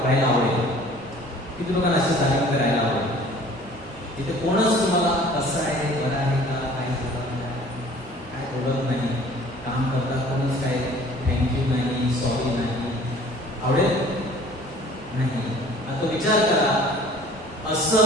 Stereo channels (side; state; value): both; normal; correlation 0.50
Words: आवडेल? किती लोकांना अशा जागेमध्ये राहायला आवडेल? तिथे कोणच तुम्हाला कसं आहे, बरं आहे का, काय बोलत नाही, काम करता कोणच काय थँक्यू नाही, सॉरी नाही, आवडेल नाही. आता विचार करा, असं